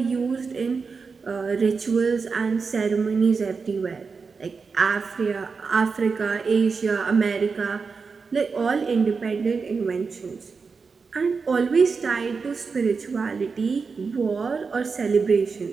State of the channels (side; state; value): left; quieter; 5.0 dB